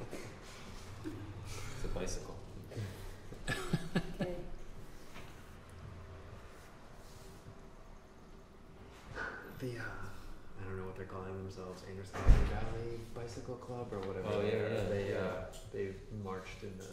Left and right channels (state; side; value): identical; both; correlation 1.00